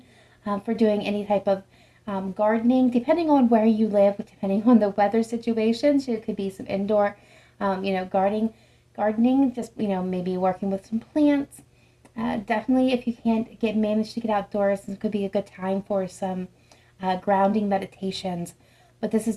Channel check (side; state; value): both; identical; correlation 1.00